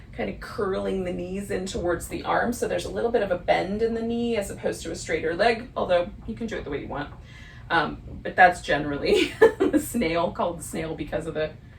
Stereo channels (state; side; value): identical; both; correlation 1.00